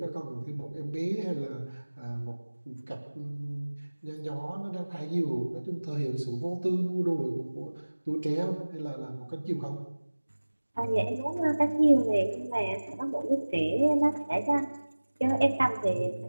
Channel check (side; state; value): both; inverted; correlation -1.00